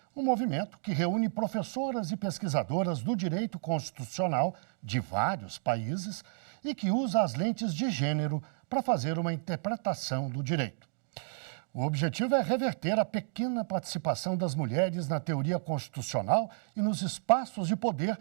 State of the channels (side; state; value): left; silent; digital silence